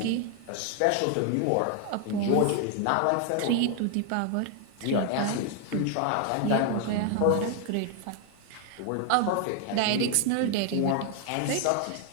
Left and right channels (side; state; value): both; different; correlation 0.00